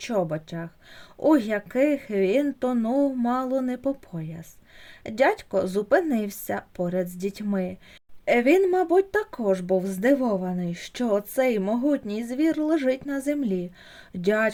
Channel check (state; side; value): identical; both; correlation 1.00